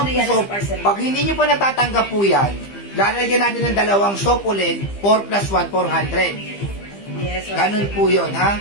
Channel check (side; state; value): right; late; 15 ms